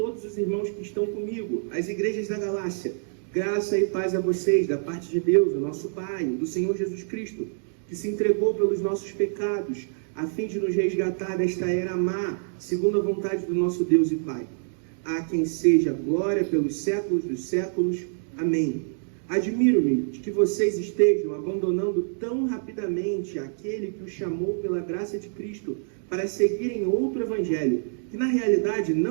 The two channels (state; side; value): silent; left; digital silence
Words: os irmãos que estão comigo, as igrejas da Galácia, graça e paz a vocês, da parte de Deus, o nosso Pai, do Senhor Jesus Cristo, que se entregou pelos nossos pecados, a fim de nos resgatar desta era má, segundo a vontade do nosso Deus e Pai. A quem seja glória pelos séculos dos séculos. Amém. Admiro-me de que vocês estejam abandonando tão rapidamente aquele que os chamou pela graça de Cristo para seguirem outro evangelho, que na realidade